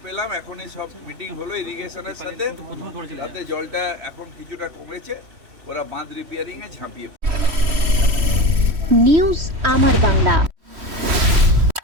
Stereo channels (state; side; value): late; left; 3.1 ms